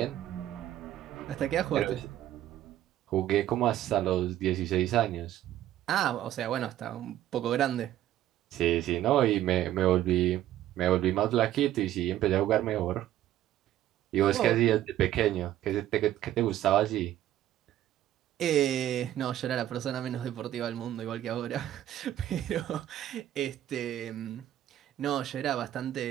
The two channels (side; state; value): left; quieter; 12.8 dB